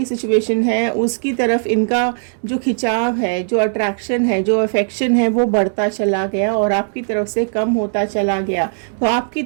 सिचुएशन है उसकी तरफ इनका जो खिंचाव है, जो अट्रैक्शन है, जो अफेक्शन है, वो बढ़ता चला गया और आपकी तरफ से कम होता चला गया। तो आपकी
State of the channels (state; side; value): silent; left; digital silence